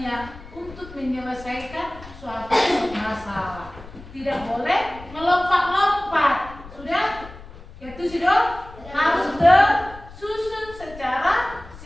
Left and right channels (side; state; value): left; noise; rumble, 17 dB below the sound